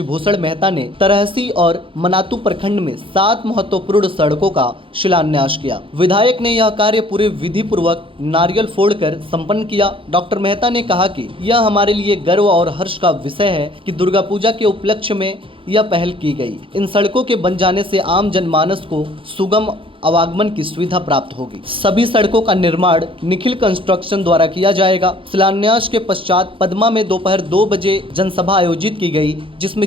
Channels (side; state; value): left; late; 0.25 ms